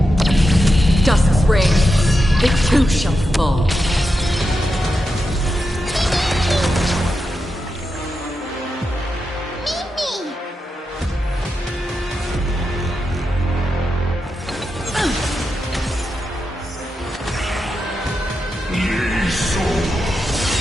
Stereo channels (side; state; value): both; normal; correlation 0.87